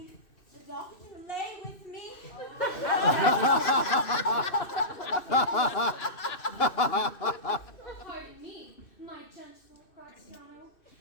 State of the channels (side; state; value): right; late; 2.6 ms